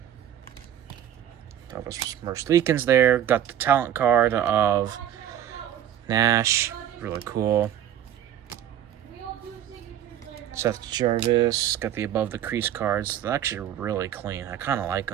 Elvis Merzlikins there. Got the talent card of Nash. Really cool. Seth Jarvis. Got the above the crease cards. They're actually really clean. I kind of like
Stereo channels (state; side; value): quieter; left; 10.5 dB